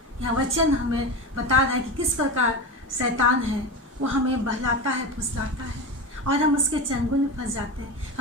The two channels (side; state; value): both; normal; correlation 0.23